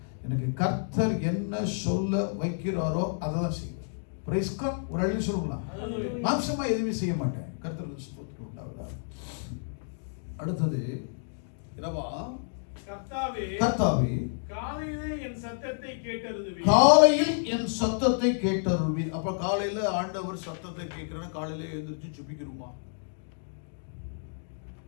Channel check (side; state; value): right; silent; digital silence